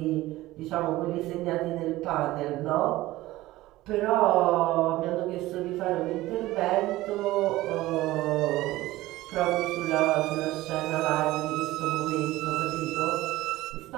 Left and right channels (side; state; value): left; quieter; 17.3 dB